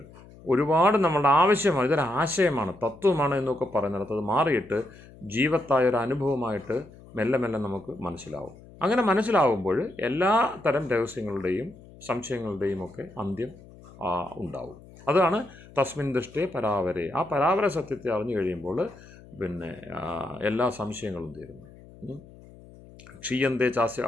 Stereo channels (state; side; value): noise; left; hum, 21 dB below the sound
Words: ഒരുപാട് നമ്മളുടെ ആവശ്യമാണ്, ഇതൊരു ആശയമാണ്, തത്വമാണ് എന്നൊക്കെ പറയുന്നിടത്ത് അത് മാറിയിട്ട് ജീവത്തായ ഒരു അനുഭവമായിട്ട് മെല്ലെ മെല്ലെ നമുക്ക് മനസ്സിലാവും. അങ്ങനെ മനസ്സിലാവുമ്പോൾ എല്ലാ തരം രഹസ്യങ്ങളുടെയും സംശയങ്ങളുടെയും ഒക്കെ അന്ത്യം ഉണ്ടാവും. അതാണ് തസ്മിൻ ദൃഷ്ടേ പരാവരെ. ആ പരാവര സത്യത്തെ അറിഞ്ഞു കഴിയുമ്പോൾ പിന്നെ എല്ലാ സംശയങ്ങളും തീരുന്നു. ക്ഷീയന്തേ ചാസ്യ,